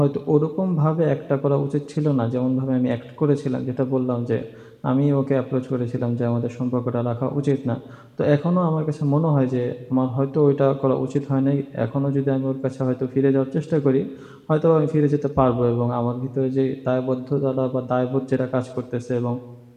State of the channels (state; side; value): identical; both; correlation 1.00